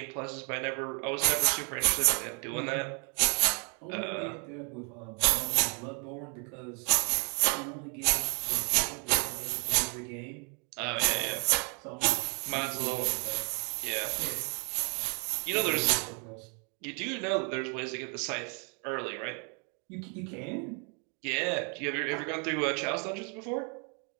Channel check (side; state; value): left; quieter; 37.1 dB